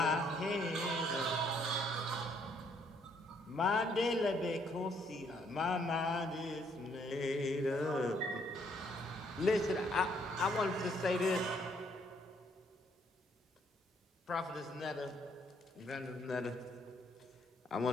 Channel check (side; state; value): both; normal; correlation 0.68